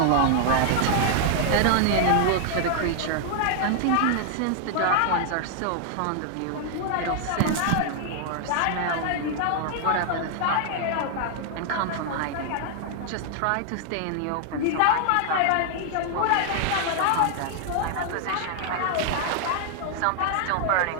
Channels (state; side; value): different; both; correlation 0.00